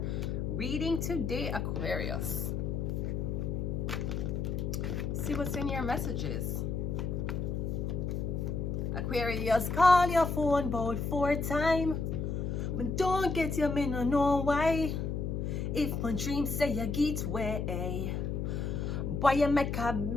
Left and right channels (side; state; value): left; noise; hum, 1 dB below the sound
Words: reading today, Aquarius. See what's in your messages. Aquarius, call your phone about 4 times, but don't get your me no know why. If my dream say you get way, boy you make a